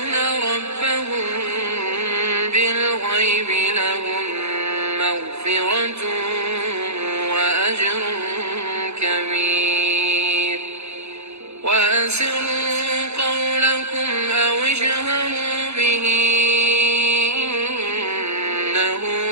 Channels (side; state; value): left; late; 0.80 ms